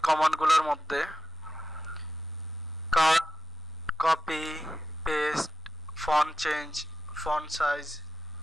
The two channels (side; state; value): both; normal; correlation 0.88